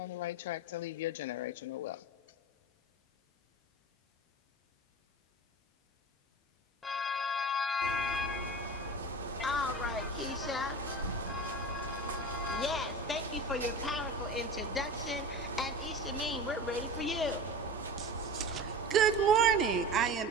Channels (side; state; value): both; normal; correlation 0.32